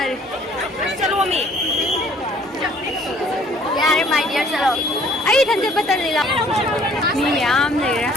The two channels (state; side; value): normal; both; correlation 0.58